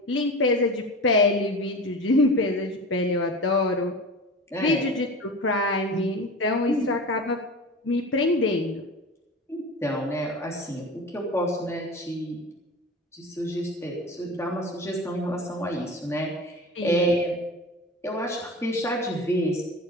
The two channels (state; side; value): normal; both; correlation 0.32